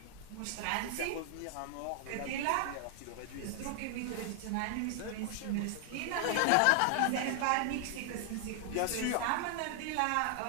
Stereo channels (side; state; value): both; different; correlation 0.00